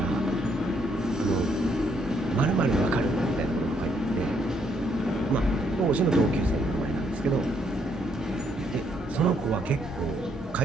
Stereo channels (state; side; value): normal; both; correlation 0.72